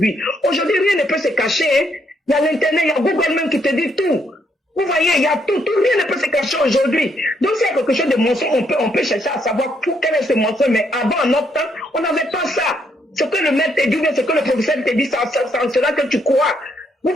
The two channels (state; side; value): normal; both; correlation 0.74